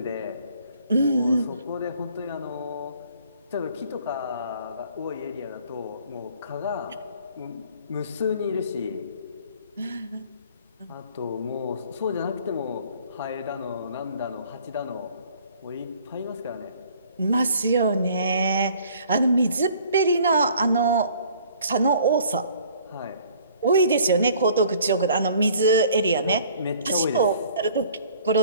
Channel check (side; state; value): both; inverted; correlation -0.55